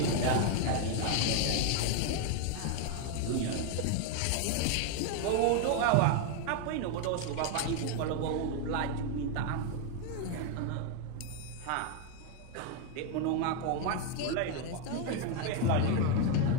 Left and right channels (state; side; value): different; both; correlation 0.01